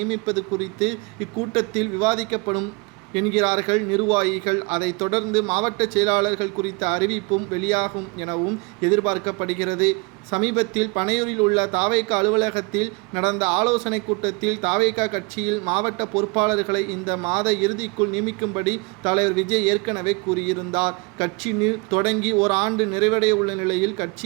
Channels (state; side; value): quieter; left; 28.8 dB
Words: குறித்து இக்கூட்டத்தில் விவாதிக்கப்படும் என்கிறார்கள் நிர்வாகிகள். அதைத் தொடர்ந்து மாவட்ட செயலாளர்கள் குறித்த அறிவிப்பும் வெளியாகும் எனவும் எதிர்பார்க்கப்படுகிறது. சமீபத்தில் பனையூரில் உள்ள தாவேக அலுவலகத்தில் நடந்த ஆலோசனை கூட்டத்தில் தாவேக கட்சியில் மாவட்ட பொறுப்பாளர்களை இந்த மாத இறுதிக்குள் நியமிக்கும்படி தலைவர் விஜய் ஏற்கனவே கூறியிருந்தார். கட்சி தொடங்கி ஒரு ஆண்டு நிறைவடைய உள்ள நிலையில்